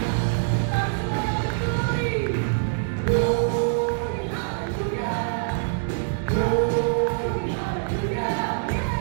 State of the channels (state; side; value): silent; left; digital silence